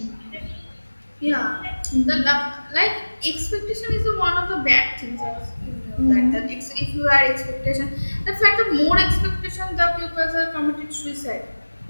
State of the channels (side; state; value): both; inverted; correlation -1.00